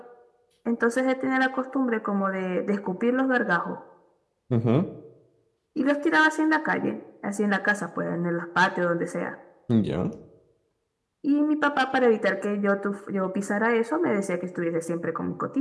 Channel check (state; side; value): identical; both; correlation 1.00